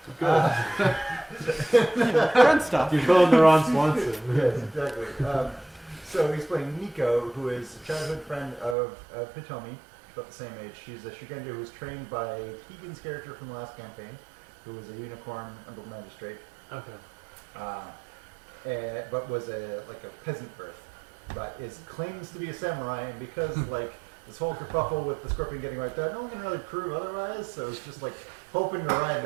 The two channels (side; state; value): left; drops out; at 8.8 s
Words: Friend stuff. you're calling the Ron Swanson. Yes, exactly. So he's playing Nico, who is a childhood friend of Hitomi, about the same age. She's a Shugendo who was trained by Keegan's character from the last campaign, who was a unicorn under magistrate, Okay. but was a peasant birth, but claims to be a samurai, and because like this whole kerfuffle with the scorpion getting wiped out, no one can really prove otherwise. So it's just like hoping to ride